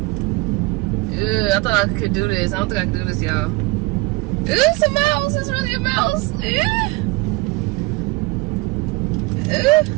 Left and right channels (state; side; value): quieter; left; 23.9 dB